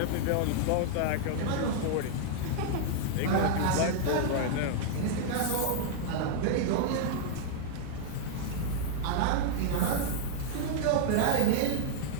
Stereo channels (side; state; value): both; different; correlation -0.01